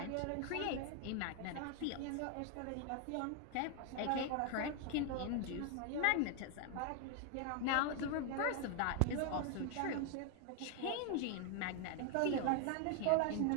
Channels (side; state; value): both; different; correlation 0.01